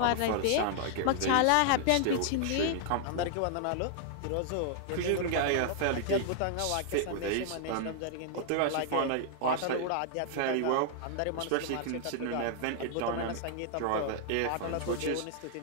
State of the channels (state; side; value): different; both; correlation -0.01